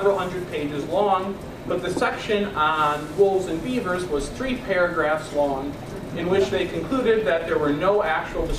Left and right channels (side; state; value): both; identical; correlation 1.00